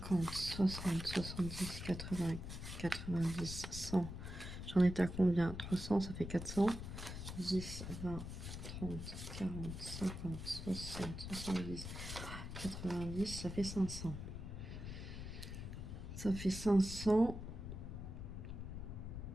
60, 70, 80, 90, 100. J'en étais à combien? 300, ça fait 400. 10, 20, 30, 40, 50, 60, 70, 90, ça fait 500. Ça fait 500.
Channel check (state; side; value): noise; left; rumble, 7 dB below the sound